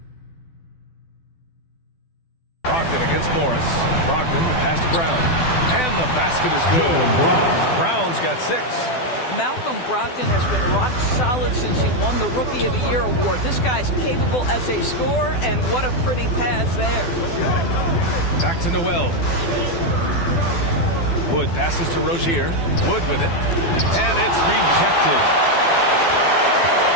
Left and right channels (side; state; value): right; late; 12 ms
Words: Brogdon against Morris. Brogdon, the pass to Brown. And the basket is good. Brown's got 6. Malcolm Brogdon has been rock solid since he won the Rookie of the Year award. This guy's capable as a scorer, and what a pretty pass there. Back to Noel. Wood passes to Rozier. Wood with it. And it's rejected.